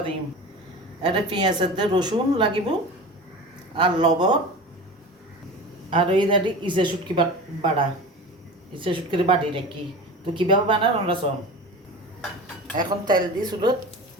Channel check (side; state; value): both; normal; correlation 0.32